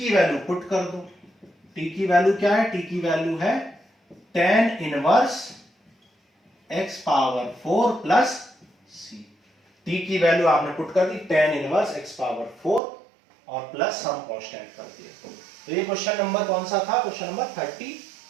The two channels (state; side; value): drops out; left; at 12.8 s